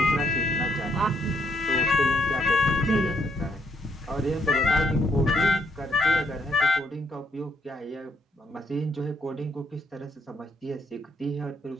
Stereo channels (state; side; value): normal; both; correlation 0.73